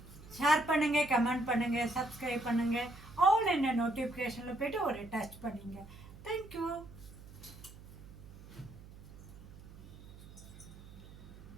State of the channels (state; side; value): noise; right; hum, 18 dB below the sound